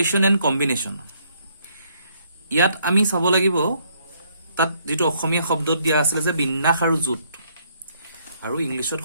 এণ্ড কম্বিনেশন ইয়াত আমি চাব লাগিব তাত যেটো অসমীয়া শব্দত দিয়া আছিল যে বিন্যাস আৰু জুট আৰু ইংলিশত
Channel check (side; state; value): both; inverted; correlation -0.69